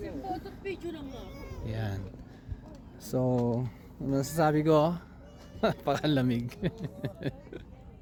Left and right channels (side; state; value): both; identical; correlation 1.00